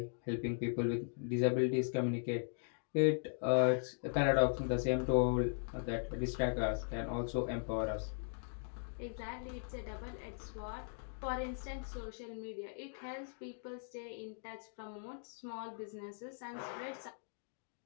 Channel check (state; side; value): silent; right; digital silence